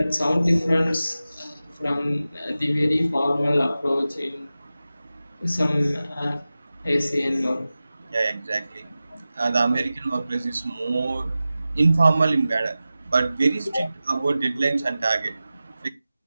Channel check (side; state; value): both; inverted; correlation -0.95